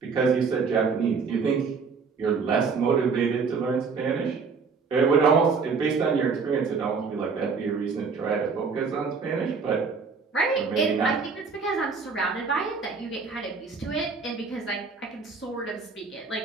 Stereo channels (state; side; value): quieter; left; 5.1 dB